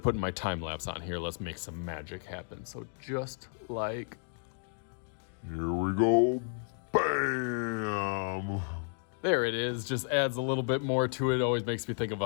putting my time lapse on here, let's make some magic happen. So just like... Here we go. Bam! There it is, just adds a little bit more to it. Always makes me think of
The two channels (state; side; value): silent; right; 56 dB below the other